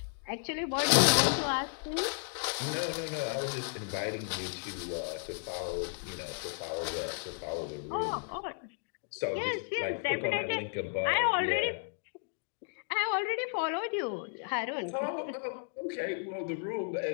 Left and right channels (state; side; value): silent; right; digital silence